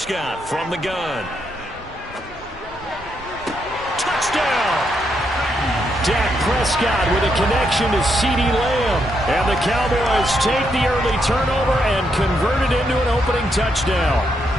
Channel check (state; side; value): normal; both; correlation 0.79